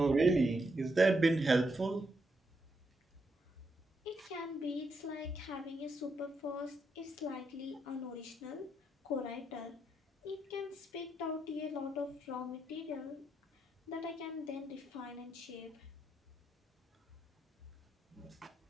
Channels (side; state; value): both; normal; correlation 0.80